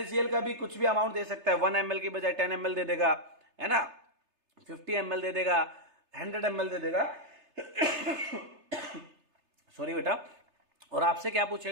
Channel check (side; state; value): left; late; 3.3 ms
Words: का भी कुछ भी अमाउंट दे सकता है, 1 ml की बजाय 10 ml दे देगा, है ना, 50 ml दे देगा, 100 ml दे देगा सॉरी बेटा। और आपसे क्या